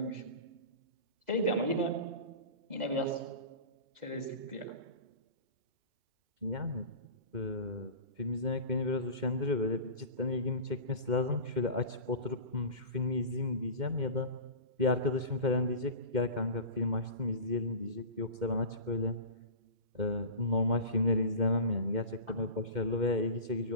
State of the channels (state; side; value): late; left; 2.1 ms